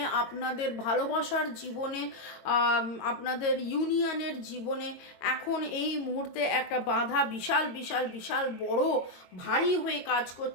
আপনাদের ভালোবাসার জীবনে, আপনাদের ইউনিয়নের জীবনে এখন এই মুহূর্তে একটা বাধা বিশাল বিশাল বিশাল বড় ভারী হয়ে কাজ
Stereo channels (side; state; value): right; late; 22 ms